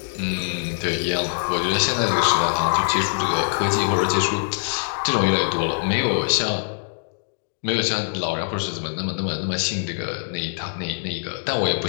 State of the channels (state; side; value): silent; right; digital silence